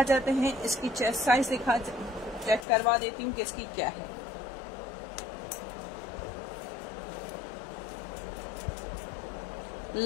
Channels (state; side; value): drops out; right; at 2.7 s